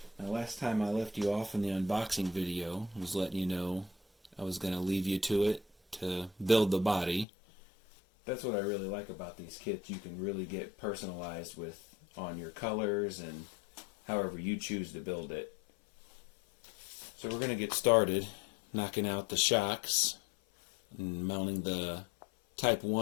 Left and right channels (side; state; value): right; drops out; at 7.2 s